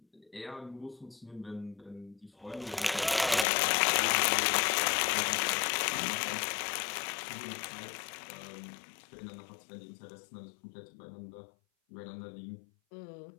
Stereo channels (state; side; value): drops out; right; at 3.5 s